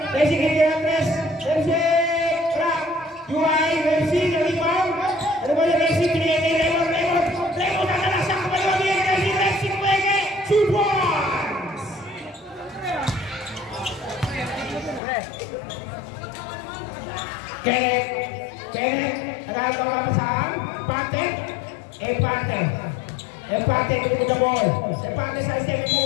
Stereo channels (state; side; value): drops out; right; at 15.0 s